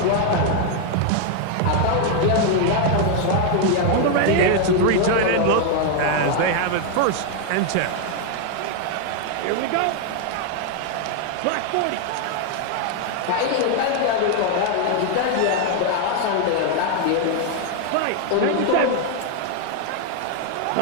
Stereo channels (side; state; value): both; different; correlation 0.00